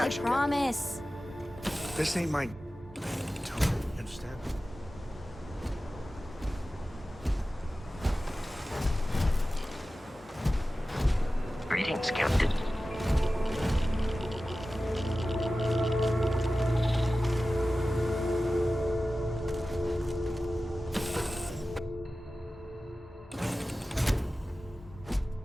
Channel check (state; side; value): normal; both; correlation 0.95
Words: I promise. This ain't my... You understand? Greetings, Captain.